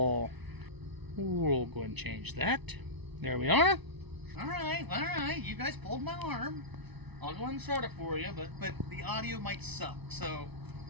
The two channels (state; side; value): late; left; 0.99 ms